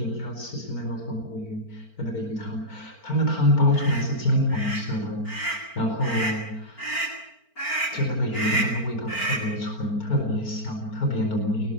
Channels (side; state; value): right; late; 4.4 ms